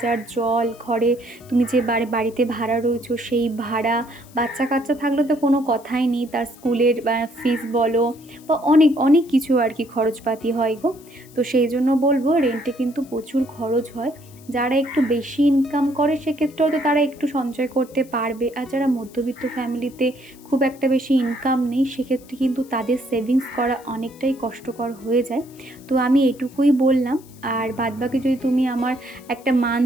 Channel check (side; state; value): left; noise; hiss, 25 dB below the sound